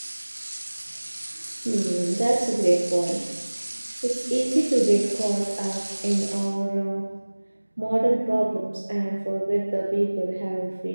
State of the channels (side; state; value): both; inverted; correlation -1.00